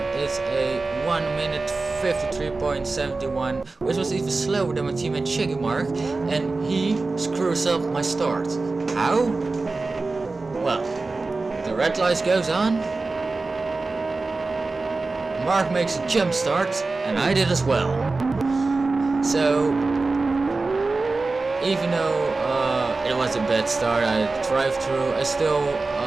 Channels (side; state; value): left; quieter; 3.6 dB